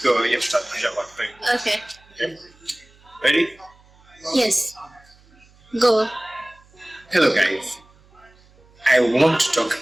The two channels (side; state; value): right; noise; hum, 29 dB below the sound